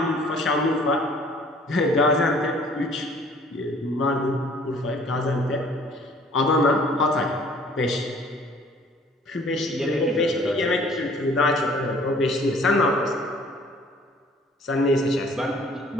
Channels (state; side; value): normal; both; correlation 0.55